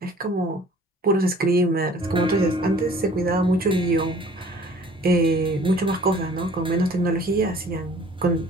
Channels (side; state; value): both; normal; correlation 0.52